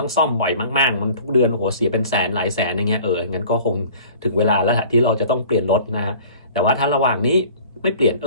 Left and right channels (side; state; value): both; inverted; correlation -0.47